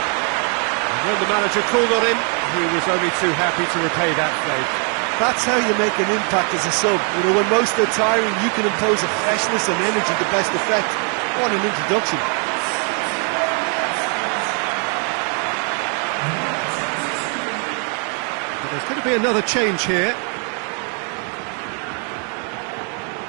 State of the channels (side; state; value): left; quieter; 39.5 dB